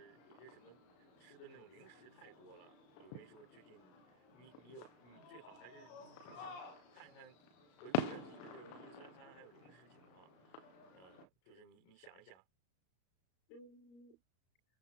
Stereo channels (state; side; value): late; right; 34 ms